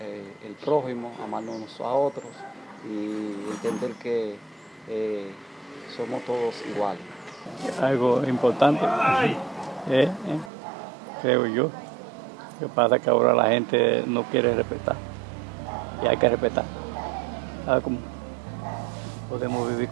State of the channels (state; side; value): drops out; left; at 10.5 s